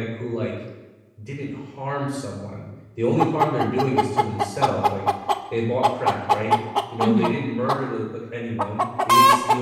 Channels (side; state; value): both; identical; correlation 1.00